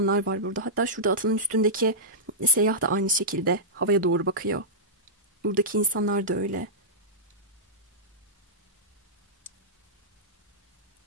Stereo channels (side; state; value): both; normal; correlation -0.13